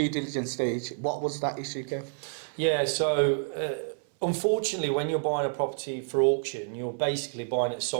diligence stage, what was that issue, Kev? Yeah, so unfortunately, when you're buying a property for auction, you're basically buying it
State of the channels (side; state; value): left; silent; 59 dB below the other